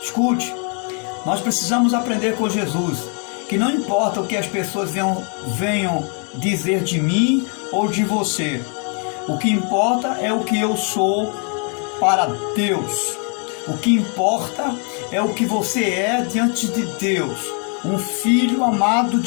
Escute, nós precisamos aprender com Jesus, que não importa o que as pessoas venham dizer de mim ou de você, o que importa é o que eu sou para Deus. O que importa é o que você é diante de Deus, um filho amado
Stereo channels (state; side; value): quieter; right; 39.1 dB